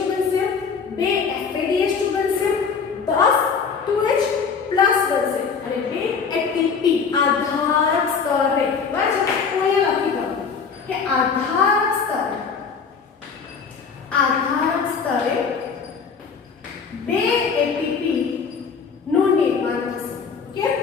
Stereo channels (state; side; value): quieter; right; 5.8 dB